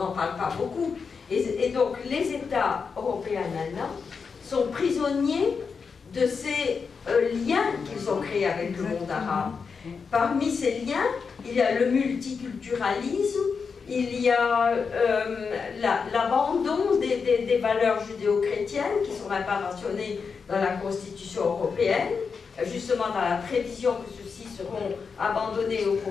parle pas beaucoup. Et donc les États européens maintenant sont prisonniers de ces liens qu'ils ont créés avec le monde arabe. Parmi ces liens, il y a le multiculturalisme, il y a l'abandon des valeurs judéo-chrétiennes qui ne sont même pas mentionnées dans la Constitution européenne, justement dans la prévision que ceux-ci seront abandonnés au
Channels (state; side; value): quieter; right; 5.5 dB